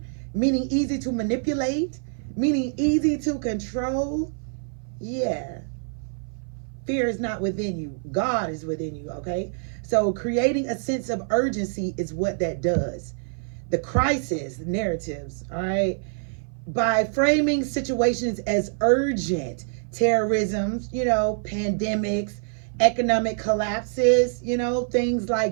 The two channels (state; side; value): silent; left; 57 dB below the other